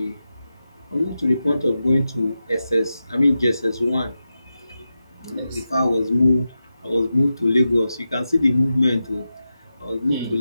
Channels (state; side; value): inverted; both; correlation -0.91